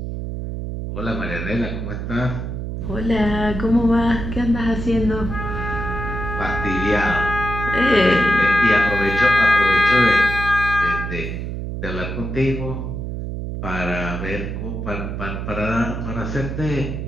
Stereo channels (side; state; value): right; noise; hum, 5 dB below the sound